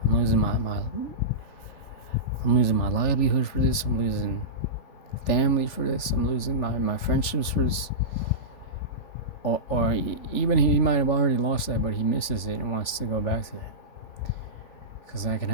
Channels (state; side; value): late; right; 3.4 ms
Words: I'm losing my livelihood for this, I'm losing family for this, I'm losing my friendships for this, or even he might have already lost that, but he misses it and wants to go back to that, because that can